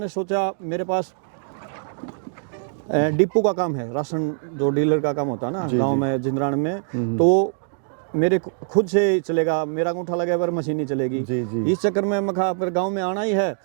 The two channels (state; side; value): silent; left; digital silence